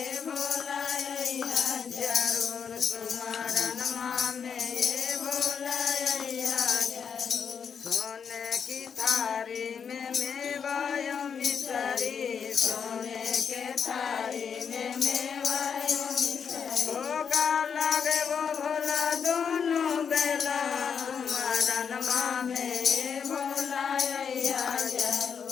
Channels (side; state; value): right; quieter; 6.8 dB